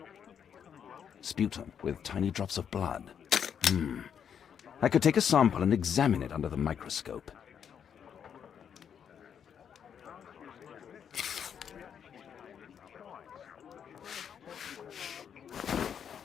Sputum with tiny drops of blood. I could take a sample and examine it under the microscope.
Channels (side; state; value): right; quieter; 8.0 dB